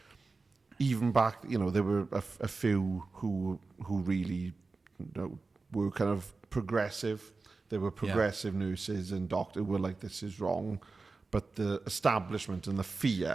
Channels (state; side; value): quieter; left; 4.0 dB